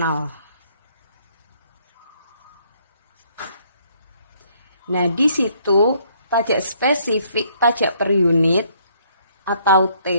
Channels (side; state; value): both; inverted; correlation -0.66